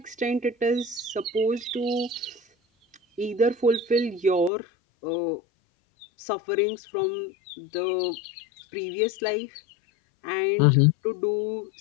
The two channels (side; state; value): right; drops out; at 4.5 s